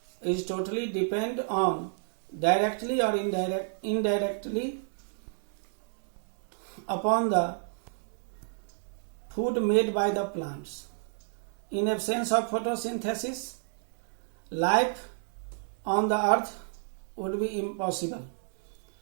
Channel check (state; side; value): silent; left; digital silence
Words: is totally depend on directly or indirectly upon the food made by the plants. In absence of photosynthesis, life on the earth would be impossible.